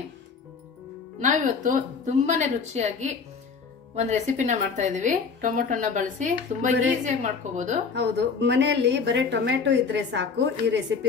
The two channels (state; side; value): quieter; right; 5.3 dB